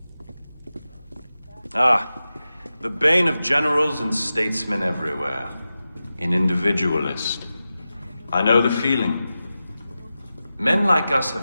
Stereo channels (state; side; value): inverted; both; correlation -0.93